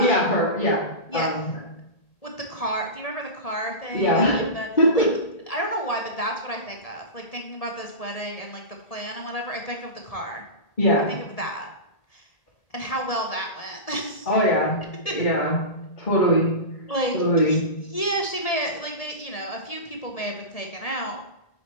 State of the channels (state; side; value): late; right; 1.7 ms